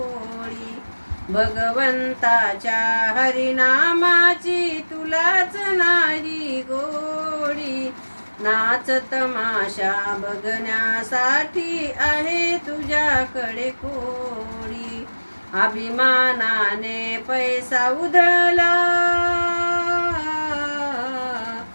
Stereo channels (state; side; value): inverted; both; correlation -1.00